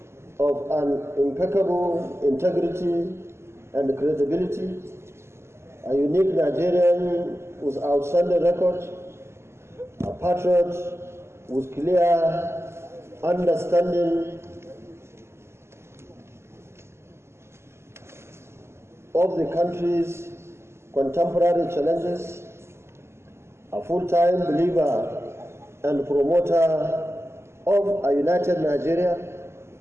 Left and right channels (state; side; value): late; left; 0.13 ms